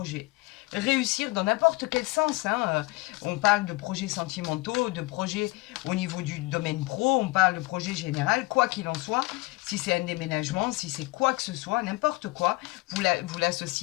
Réussir dans n'importe quel sens. Hein. On parle de projets sentimentaux, de projets au niveau du domaine pro, on parle de projet général, quoi qu'il en soit. Si c'est un déménagement, si c'est quoi que ce soit, n'importe quoi, vous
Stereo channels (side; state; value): right; quieter; 23.1 dB